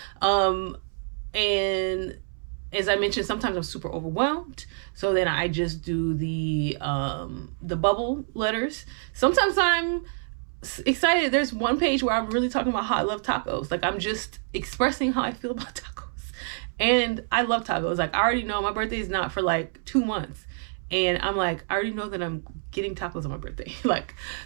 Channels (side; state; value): left; silent; 60 dB below the other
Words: And as I mentioned, sometimes I'm super overwhelmed, so then I just do the bubble letters. Sometimes I'm excited. There's one page where I'm really talking about how I love tacos. Like I'm just expressing how I feel about tacos. And I love tacos. Like I already know my birthday is not for like 2 months. And I'm like, I already know that I'm getting tacos on my birthday. Like,